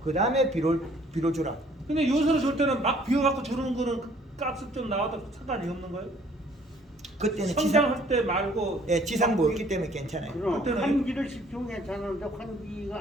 그 다음에 비료 주라. 근데 요소를 줄 때는 막 비워갖고 주는 거는 가스 좀 나와도 상관이 없는 거예요? 그때는 성장할 때 말고. 지상부 없기 때문에 괜찮아요. 그럼 그때는 환기를 시키면 괜찮은데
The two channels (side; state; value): both; normal; correlation 0.58